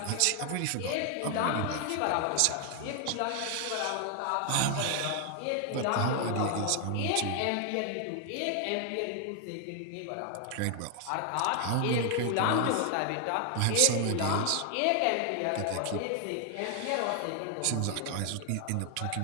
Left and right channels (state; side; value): different; both; correlation 0.00